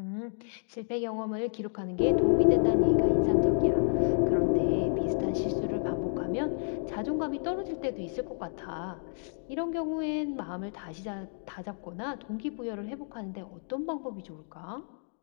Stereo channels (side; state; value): right; silent; 58 dB below the other